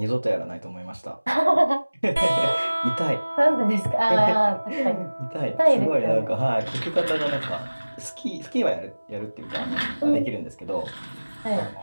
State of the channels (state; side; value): inverted; both; correlation -1.00